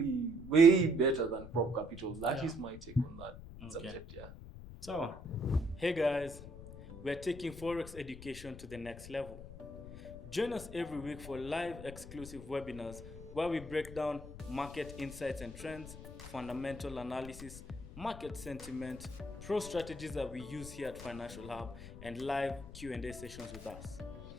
way better than prop capital. That is my take on that subject, yeah. So, hey guys, we're taking Forex education to the next level. Join us every week for live exclusive webinars where we break down market insights and trends, fundamental analysis, market sentiment, pro strategies that we use here at Financial Hub, and live Q&A sessions with us.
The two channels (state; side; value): noise; left; rumble, 13 dB below the sound